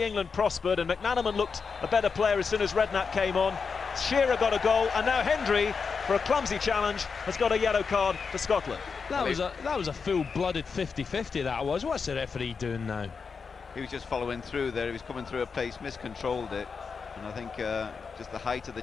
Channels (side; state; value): right; quieter; 5.4 dB